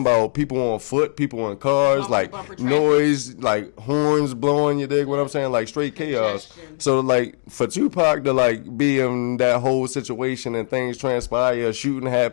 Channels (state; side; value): silent; right; digital silence